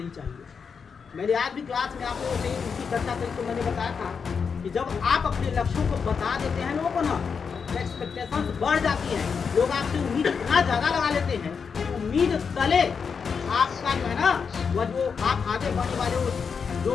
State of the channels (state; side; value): quieter; right; 6.0 dB